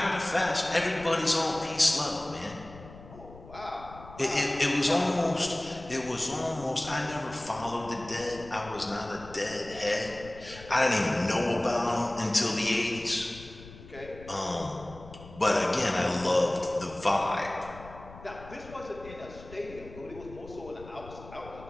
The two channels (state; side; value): noise; left; rumble, 17 dB below the sound